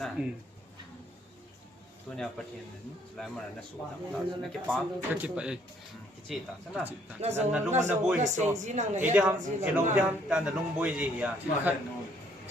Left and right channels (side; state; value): both; normal; correlation 0.65